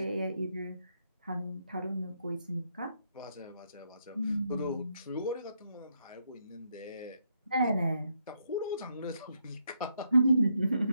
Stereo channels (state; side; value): inverted; both; correlation -0.77